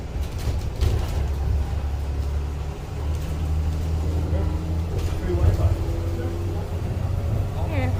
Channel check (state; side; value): identical; both; correlation 1.00